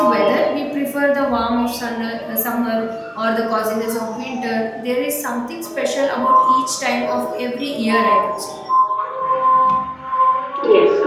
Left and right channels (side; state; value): both; identical; correlation 1.00